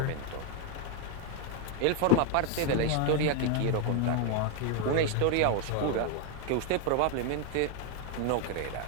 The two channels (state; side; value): different; both; correlation 0.01